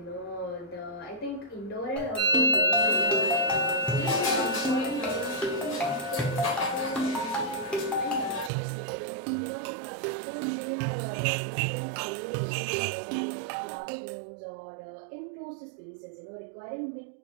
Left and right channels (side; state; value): left; drops out; at 8.5 s